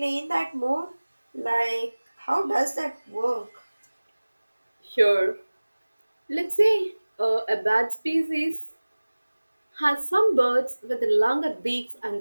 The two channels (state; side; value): inverted; both; correlation -1.00